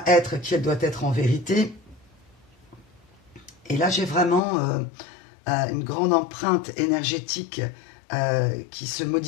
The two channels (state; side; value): drops out; right; at 4.4 s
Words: être qui elle doit être en vérité. Et là, j'ai vraiment une grande empreinte énergétique qui se